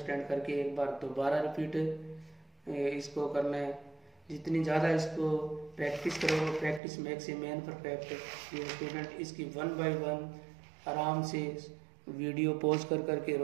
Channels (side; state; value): left; drops out; at 6.8 s